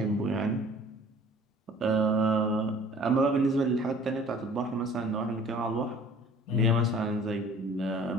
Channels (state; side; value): normal; both; correlation 0.50